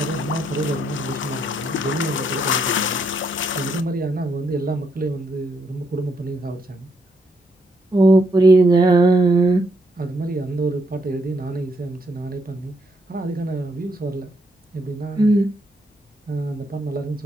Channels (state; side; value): normal; both; correlation 0.75